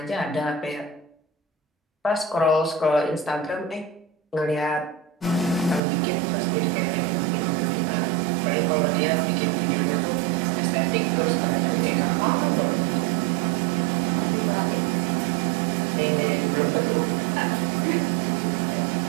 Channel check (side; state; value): left; drops out; at 5.8 s